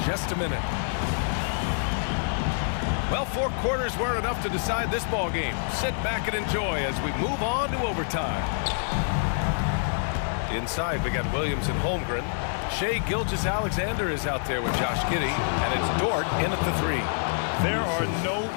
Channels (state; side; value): silent; right; digital silence